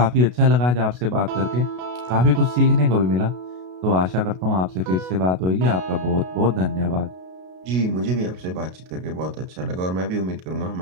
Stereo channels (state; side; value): late; left; 33 ms